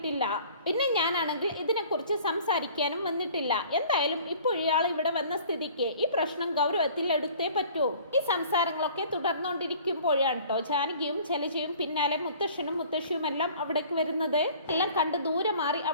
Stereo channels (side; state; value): both; inverted; correlation -0.50